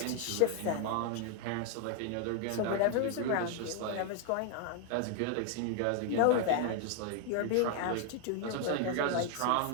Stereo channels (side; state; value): both; different; correlation 0.00